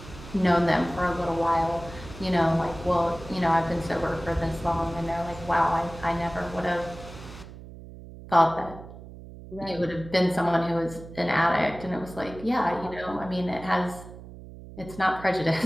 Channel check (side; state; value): right; noise; hum, 15 dB below the sound